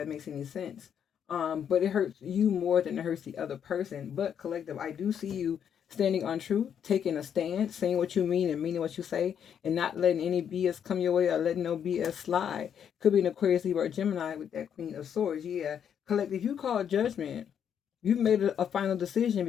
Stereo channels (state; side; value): quieter; right; 8.4 dB